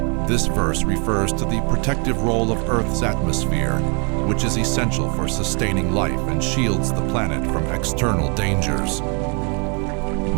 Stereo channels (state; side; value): quieter; left; 35.5 dB